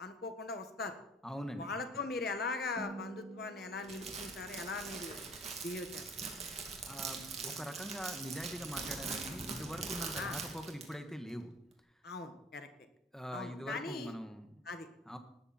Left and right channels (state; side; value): normal; both; correlation 0.50